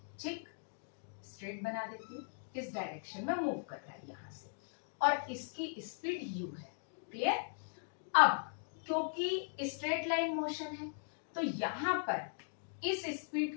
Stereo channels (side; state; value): right; silent; digital silence